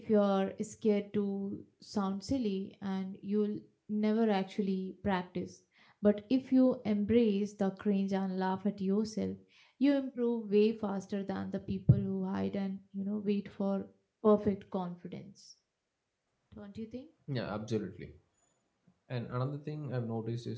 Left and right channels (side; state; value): both; identical; correlation 1.00